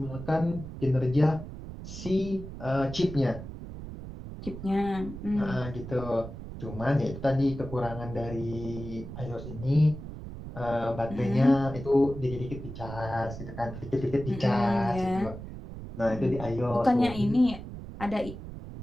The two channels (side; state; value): right; noise; rumble, 11 dB below the sound